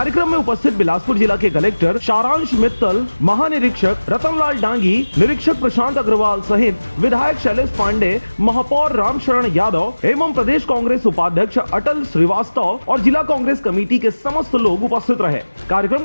में उपस्थित बिलासपुर जिला के कलेक्टर सारांश मित्तल, महानिरीक्षक रतनलाल डांगी, निरीक्षक प्रशांत अग्रवाल सहित विधायक शैलेश पांडे, महापौर रामशरण यादव एवं प्रदेश कांग्रेस उपाध्यक्ष अटल श्रीवास्तव और जिला कांग्रेस कमेटी के समस्त लोग उपस्थित रहे। कार्यक्रम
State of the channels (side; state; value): both; inverted; correlation -1.00